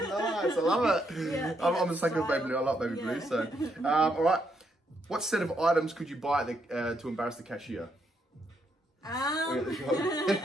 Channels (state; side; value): normal; both; correlation 0.77